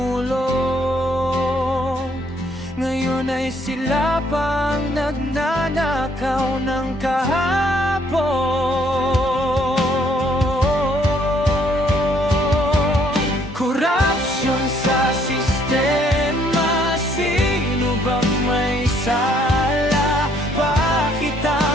ngayon ay sila pang nagnanakaw ng kahapon. Korupsyon sa sistema, sino bang may sala? Bakit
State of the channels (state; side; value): normal; both; correlation 0.66